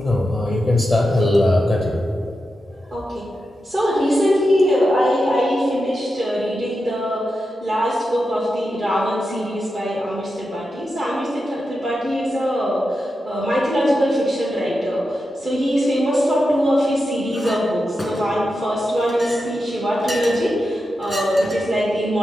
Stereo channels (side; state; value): both; normal; correlation 0.89